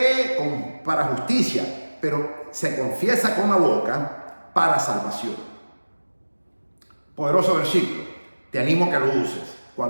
para justicia, pero se confiesa con la boca para salvación. Poderoso versículo. Te animo a que lo uses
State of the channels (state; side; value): inverted; both; correlation -1.00